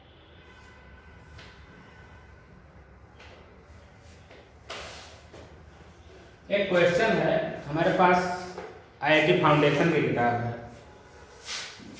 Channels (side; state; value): both; identical; correlation 1.00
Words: एक क्वेश्चन है हमारे पास, आईआईटी फाउंडेशन की किताब है,